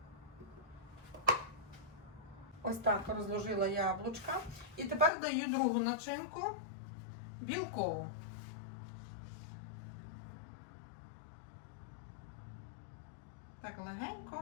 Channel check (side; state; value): right; drops out; at 5.1 s